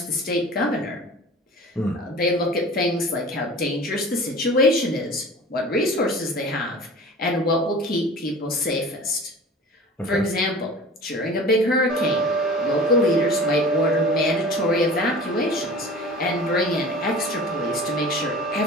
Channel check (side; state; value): both; normal; correlation 0.40